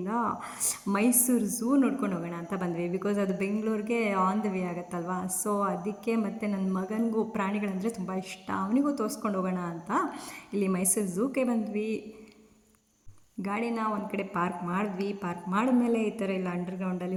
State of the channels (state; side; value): identical; both; correlation 1.00